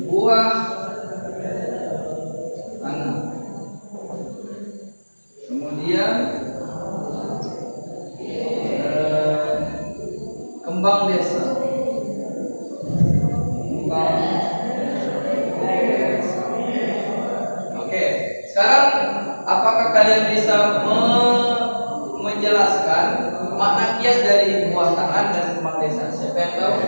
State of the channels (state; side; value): inverted; both; correlation -1.00